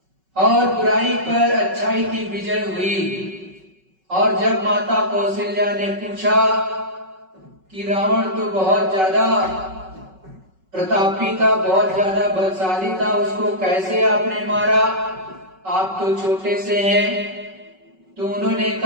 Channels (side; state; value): left; late; 5.3 ms